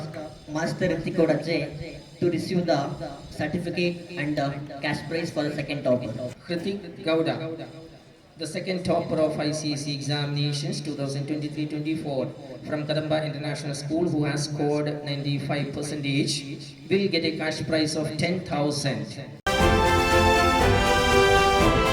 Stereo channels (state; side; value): identical; both; correlation 1.00